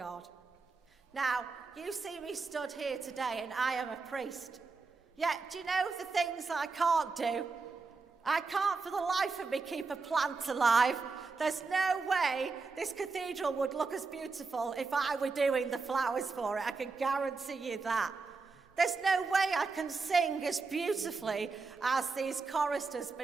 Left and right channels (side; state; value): left; quieter; 4.3 dB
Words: Now, you see me stood here today and I am a priest. Yet, do you know the things I can't do? I can't for the life of me keep a plant alive. There's no way this cathedral would look as beautiful if I were doing the flowers for it. I can guarantee you that. There's no way I can sing as beautifully as these choristers